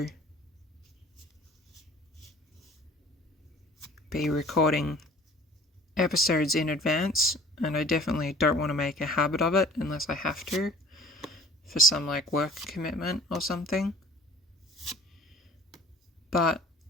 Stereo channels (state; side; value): normal; both; correlation 0.49